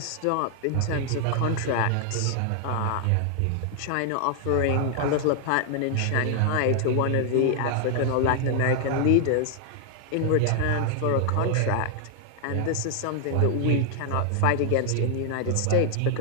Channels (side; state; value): both; different; correlation 0.00